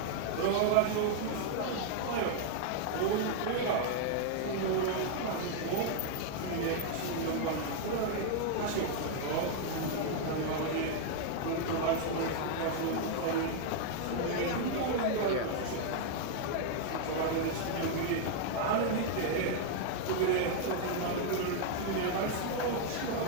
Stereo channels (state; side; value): different; both; correlation 0.00